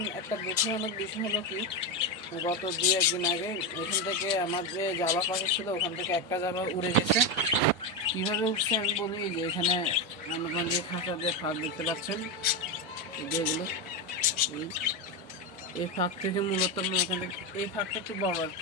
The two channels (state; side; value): normal; both; correlation 0.12